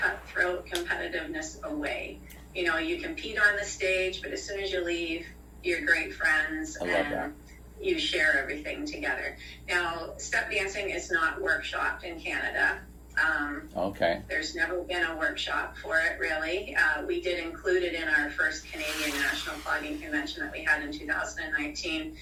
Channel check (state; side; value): identical; both; correlation 1.00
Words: competitiveness away. You compete on the stage, but as soon as you leave, you're great friends and you share everything together. Now, step dancing is not workshopped in Canada. There's never been a workshop for it, really. We did include it in our first Canadian National Clogging Convention that we had in 2019